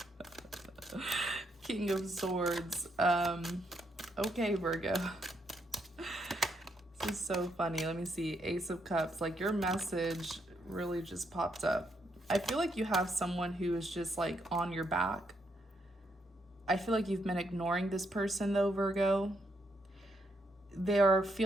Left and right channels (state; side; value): normal; both; correlation 0.77